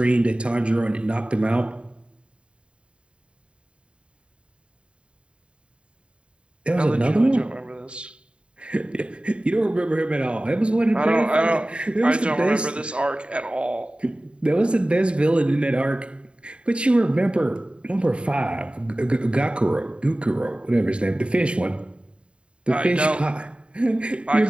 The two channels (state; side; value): late; left; 0.056 ms